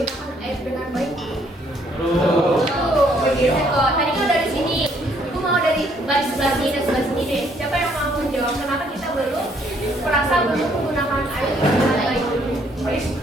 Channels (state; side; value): normal; both; correlation 0.66